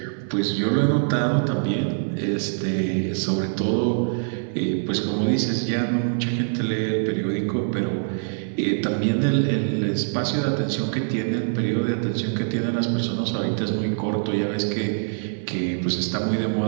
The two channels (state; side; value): silent; left; 56 dB below the other